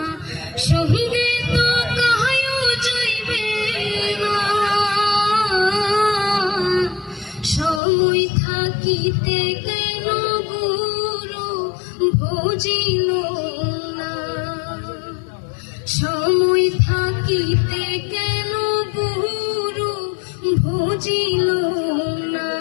সঙ্গে তো কাহায়ও যাইবে না। সময় থাকিতে কেন গুরু ভজিল না, সময় থাকিতে কেন গুরু ভজিল না।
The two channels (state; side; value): drops out; right; at 7.8 s